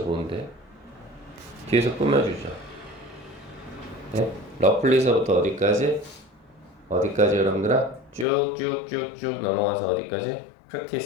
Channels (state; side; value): drops out; right; at 8.2 s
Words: 뒤에서 꾸며주죠. 네? 러플리서부터 어디까지? 어디까지 여러분들아? 쭉쭉쭉쭉 넘어가서 어디까지?